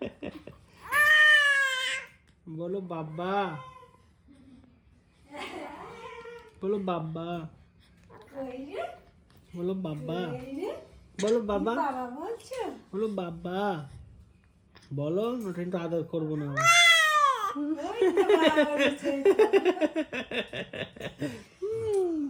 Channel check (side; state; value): both; identical; correlation 1.00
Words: বলো বাবা, বলো বাবা, বলো বাবা, বলো বাবা, বলো বাবা, বলো। ওটা একটু আদর করবো না